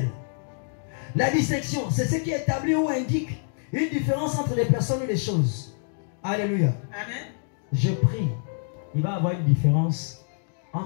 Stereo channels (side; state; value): right; silent; digital silence